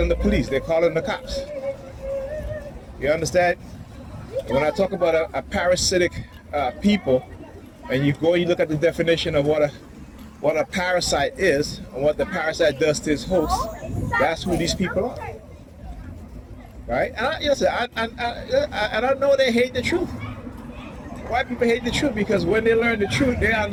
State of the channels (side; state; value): both; identical; correlation 1.00